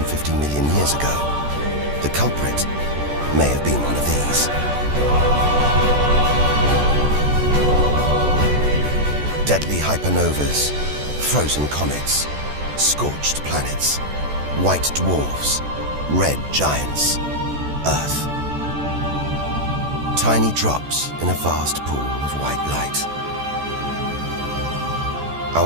million years ago, the culprit may have been one of these. Deadly hypernovas, frozen comets, scorched planets, white dwarfs, red giants, Earth. Tiny drops in a vast pool of white light.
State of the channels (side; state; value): left; late; 14 ms